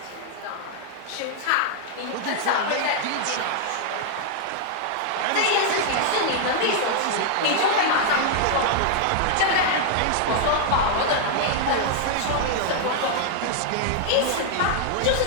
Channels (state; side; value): different; both; correlation -0.01